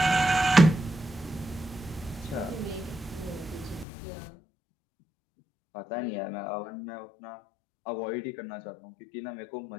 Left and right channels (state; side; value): drops out; right; at 3.9 s